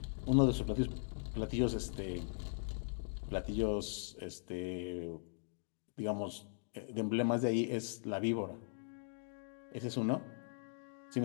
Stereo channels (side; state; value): right; silent; digital silence